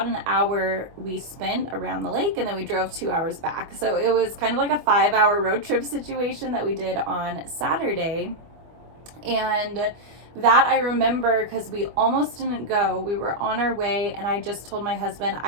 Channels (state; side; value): late; left; 24 ms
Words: an hour we spent around the lake, and then we drove 2 hours back. So it was kind of like a 5-hour road trip situation that we did on Saturday. And that I remember because we almost didn't go. We were on our way, and I just told my husband,